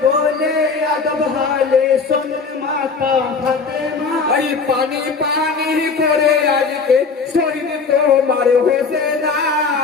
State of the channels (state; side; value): quieter; right; 4.8 dB